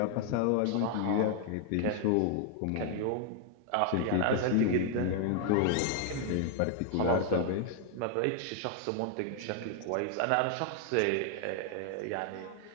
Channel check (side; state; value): both; different; correlation 0.00